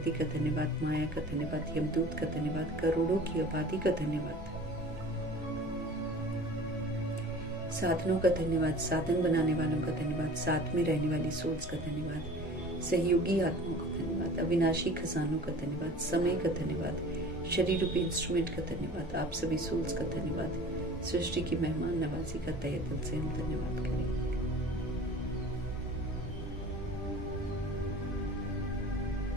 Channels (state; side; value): normal; both; correlation 0.42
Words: का धन्यवाद, माया का धन्यवाद, यमदूत का धन्यवाद, करोड़ों की आबादी का धन्यवाद, साधनों का धन्यवाद, साधन बनाने वालों का धन्यवाद, साथ में रहने वाली सोल्स का धन्यवाद, सहयोगी आत्माओं का धन्यवाद, अविनाशी खजानों का धन्यवाद, समय का धन्यवाद, शरीर रूपी इंस्ट्रूमेंट का धन्यवाद, आप सभी सोल्स का धन्यवाद, सृष्टि की मेहमान नवाजी का तहे दिल से हम धन्यवाद करेंगे।